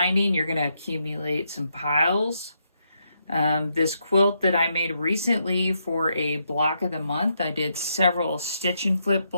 you're going to accumulate some piles. This quilt that I made recently for a block of the month, I did several stitch and flip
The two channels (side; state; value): both; inverted; correlation -0.79